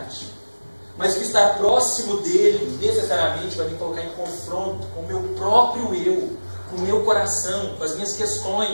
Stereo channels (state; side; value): inverted; both; correlation -1.00